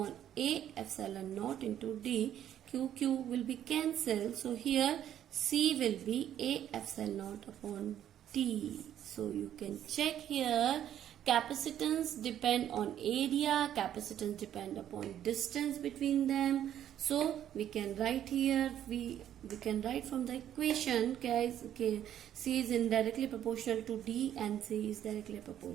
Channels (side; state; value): left; quieter; 10.8 dB